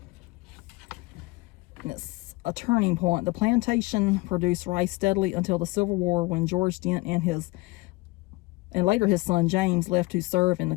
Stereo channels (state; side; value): quieter; right; 23.0 dB